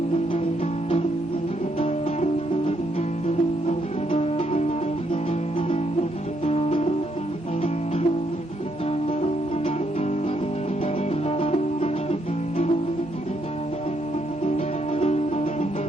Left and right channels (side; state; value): both; normal; correlation 0.75